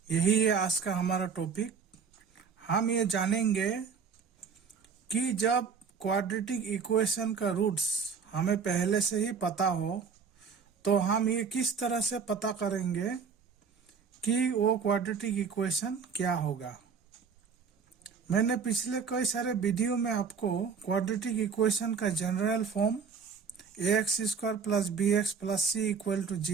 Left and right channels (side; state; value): left; quieter; 5.9 dB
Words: यही है आज का हमारा topic. हम ये जानेंगे कि जब क्वाड्रेटिक इक्वेशन का रूट्स हमें पहले से ही पता हो तो हम ये किस तरह से पता करेंगे कि वो क्वाड्रेटिक इक्वेशन क्या होगा। मैंने पिछले कई सारे वीडियो में आपको क्वाड्रेटिक इक्वेशन का general form ax² plus bx plus c equal to